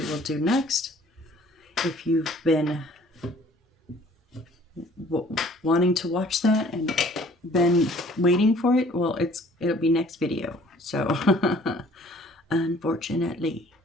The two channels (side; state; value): both; normal; correlation 0.54